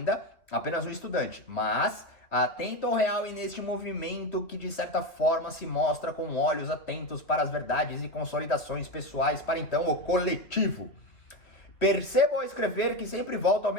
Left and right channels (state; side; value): late; right; 2.9 ms